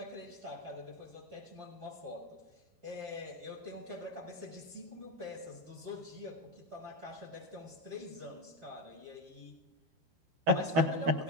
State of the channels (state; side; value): late; left; 13 ms